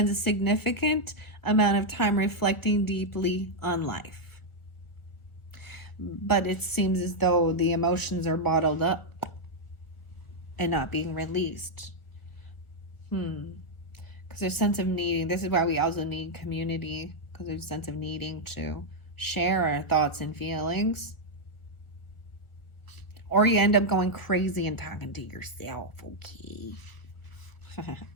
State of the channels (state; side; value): late; right; 1.3 ms